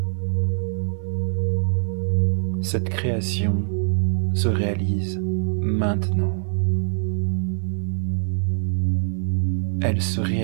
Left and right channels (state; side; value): silent; left; digital silence